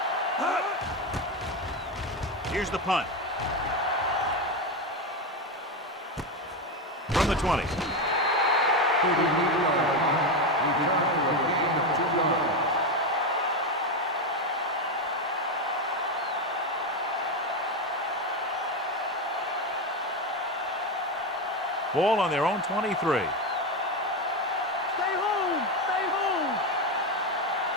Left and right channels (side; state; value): both; normal; correlation 0.12